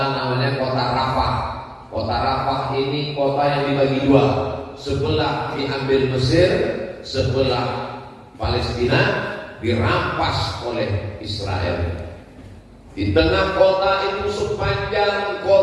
namanya kota Rafah. Kota Rafah ini kota yang dibagi dua. Sebelah diambil Mesir, sebelah Palestina dirampas oleh Israel. Di tengah kota itu sepanjang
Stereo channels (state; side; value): identical; both; correlation 1.00